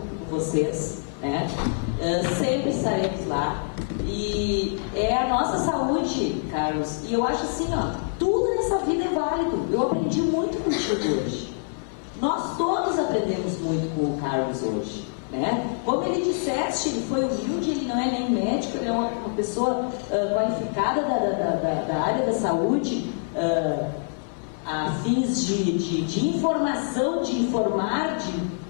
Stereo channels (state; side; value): silent; right; 57 dB below the other